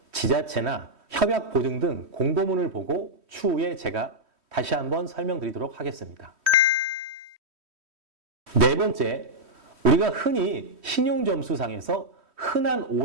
지자체나 협약 보증 등 공고문을 보고 추후에 제가 다시 한번 설명드리도록 하겠습니다. 네 번째, 우리가 흔히 신용점수상에서 흔한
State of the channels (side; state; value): left; late; 3.1 ms